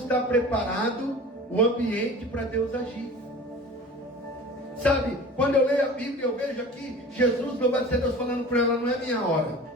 preparado o ambiente para Deus agir. Sabe, quando eu leio a Bíblia, eu vejo aqui Jesus, louvado seja Deus, falando para ela, não é minha hora.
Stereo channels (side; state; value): both; normal; correlation 0.39